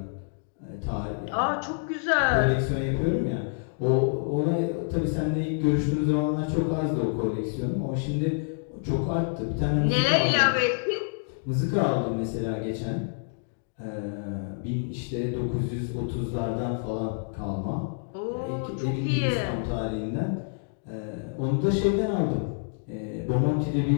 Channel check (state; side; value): silent; right; digital silence